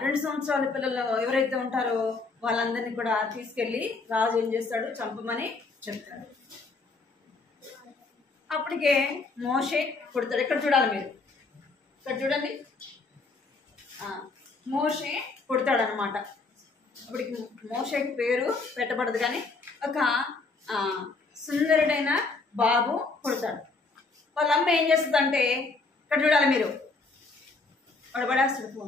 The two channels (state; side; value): quieter; right; 3.9 dB